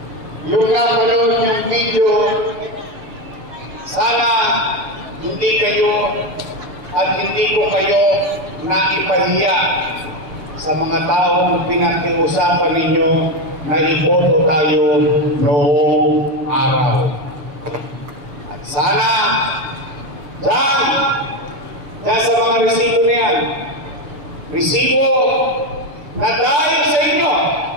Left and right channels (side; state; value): left; late; 6.8 ms